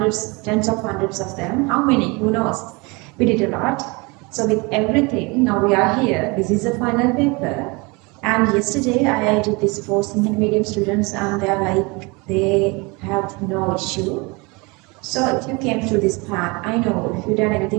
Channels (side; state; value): left; quieter; 27.4 dB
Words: tens of hundreds of them. How many? Who knows? We did a lot. So with everything, now we are here. This is the final paper. And yesterday I did this for Sinhala medium students, and they're like, they have no issue. So if you came through this path, I know if you've done